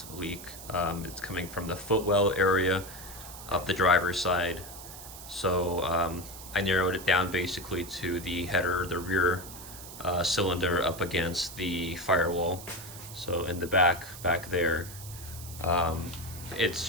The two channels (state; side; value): noise; right; hiss, 14 dB below the sound